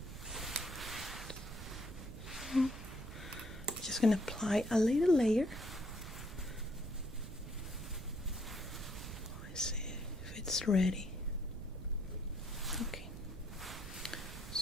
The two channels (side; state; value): right; noise; rumble, 11 dB below the sound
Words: So, just gonna apply a little layer. Let's see if it's ready. Okay,